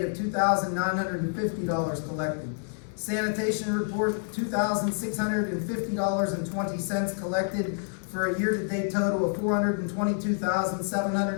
of $2,950 collected. Sanitation report, $2,650.20 collected for a year-to-date total of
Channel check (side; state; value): right; silent; digital silence